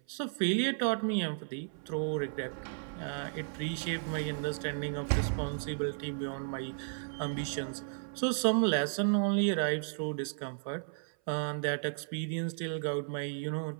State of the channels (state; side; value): silent; left; 55 dB below the other